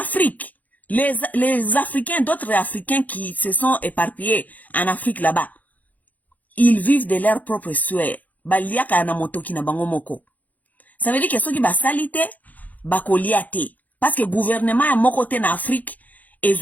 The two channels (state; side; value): late; right; 0.080 ms